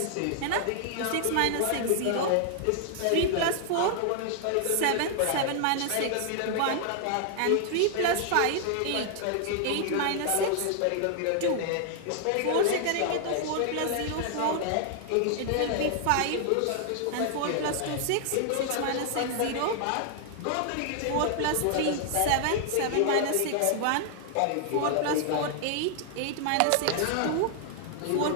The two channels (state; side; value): different; both; correlation 0.00